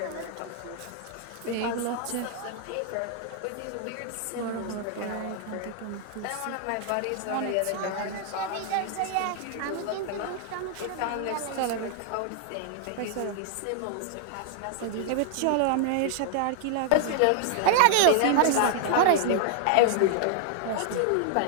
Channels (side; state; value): both; different; correlation 0.00